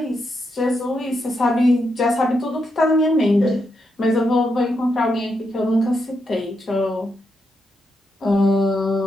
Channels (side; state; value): both; normal; correlation 0.82